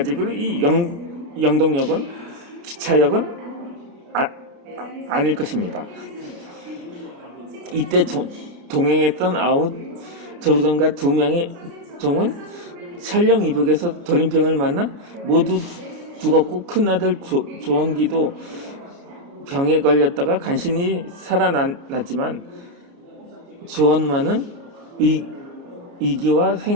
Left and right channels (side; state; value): left; late; 33 ms